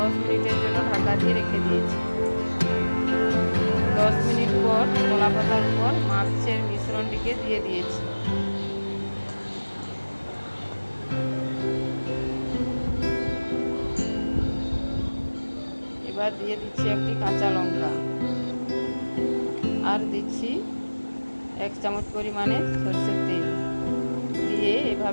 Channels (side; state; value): both; inverted; correlation -1.00